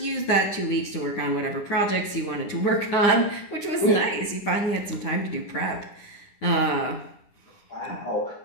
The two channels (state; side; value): late; right; 9.9 ms